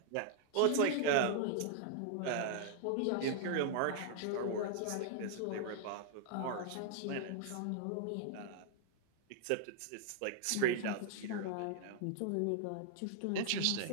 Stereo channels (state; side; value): different; both; correlation 0.00